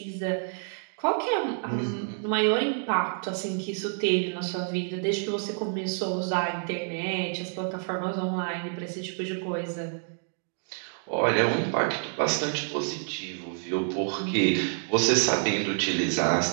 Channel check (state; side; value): silent; left; 59 dB below the other